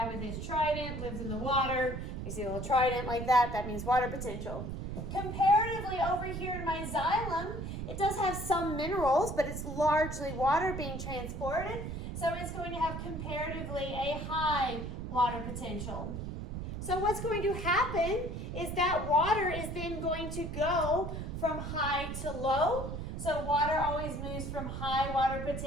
with his trident lives in the water. You see a little trident like that, that means water potential. Comparatively over here in my xylem, it does have some minerals, but it's largely water being transported. So it's going to have comparatively a high water potential. So what's going to happen is that water is then going to go from high to low. So water always moves from high water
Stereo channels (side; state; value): right; noise; rumble, 6 dB below the sound